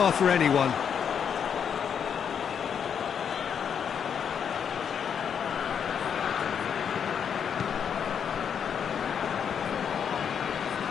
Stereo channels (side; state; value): right; quieter; 7.6 dB